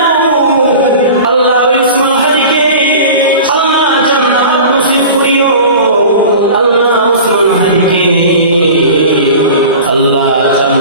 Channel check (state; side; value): inverted; both; correlation -0.37